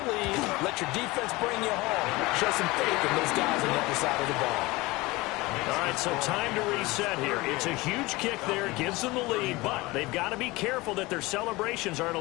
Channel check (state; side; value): quieter; right; 21.8 dB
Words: Let your defense bring you home. Show some faith in those guys on the other side of the ball. All right, so time to reset here. It's a huge kick there, gives them the lead, but they've got to be careful that their celebrations aren't a